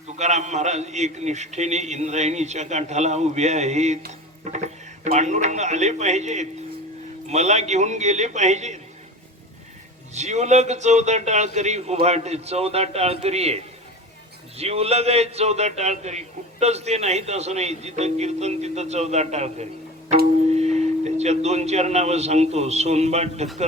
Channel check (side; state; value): both; normal; correlation 0.33